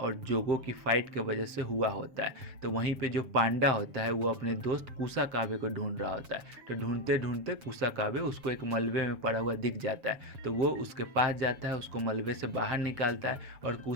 जोगो की फाइट की वजह से हुआ होता है। तो वहीं पे जो पांडा होता है वो अपने दोस्त कुसाकाबे को ढूंढ रहा होता है। तो ढूंढते ढूंढते कुसाकाबे उसको एक मलबे में पड़ा हुआ दिख जाता है। तो वो उसके पास जाता है, उसको मलबे से बाहर निकालता है। और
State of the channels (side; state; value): left; late; 7.2 ms